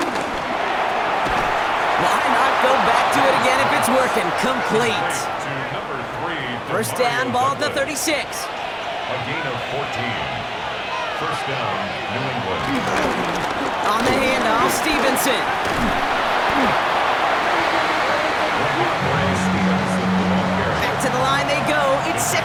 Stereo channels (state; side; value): identical; both; correlation 1.00